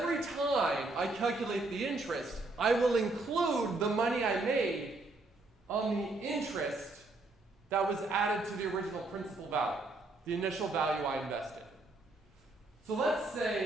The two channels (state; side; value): quieter; left; 3.1 dB